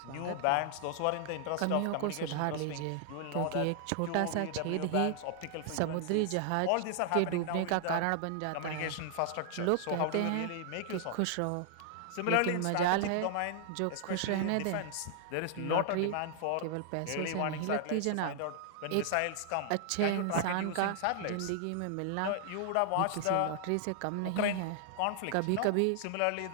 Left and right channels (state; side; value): different; both; correlation 0.00